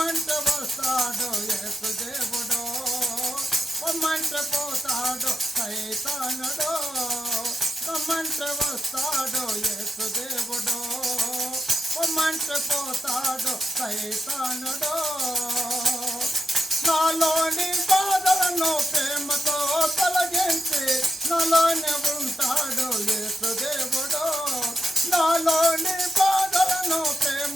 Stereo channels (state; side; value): normal; both; correlation 0.83